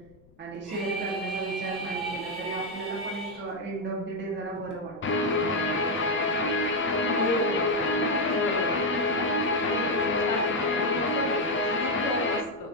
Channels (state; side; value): noise; left; rumble, 29 dB below the sound